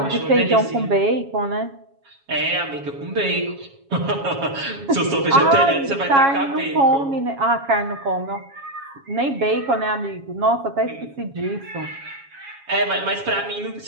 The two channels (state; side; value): late; left; 7.3 ms